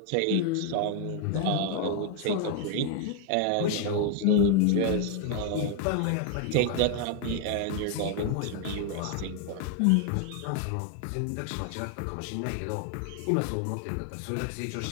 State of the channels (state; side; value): different; both; correlation 0.01